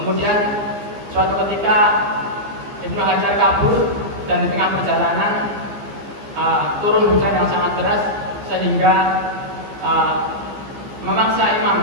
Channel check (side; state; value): left; late; 15 ms